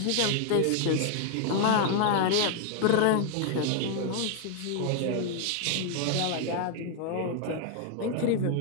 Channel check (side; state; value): both; different; correlation 0.00